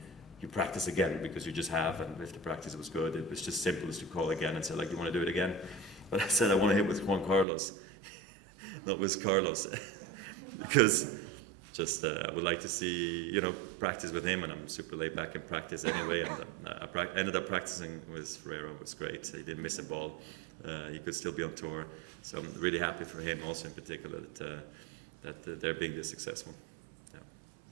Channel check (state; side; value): drops out; left; at 7.5 s